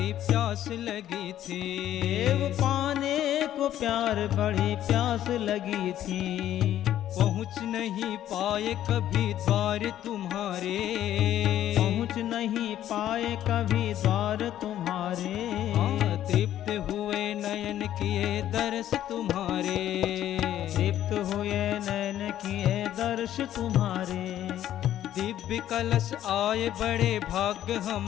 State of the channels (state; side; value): quieter; right; 11.9 dB